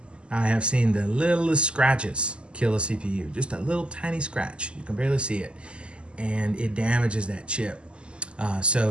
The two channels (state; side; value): late; left; 0.052 ms